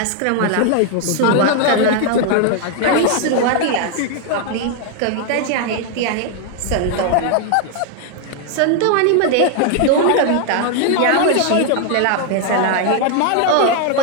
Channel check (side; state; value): both; different; correlation 0.00